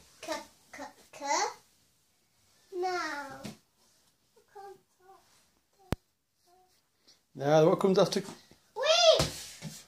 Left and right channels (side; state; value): both; identical; correlation 1.00